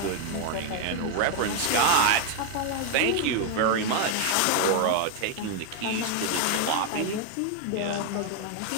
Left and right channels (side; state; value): both; different; correlation 0.00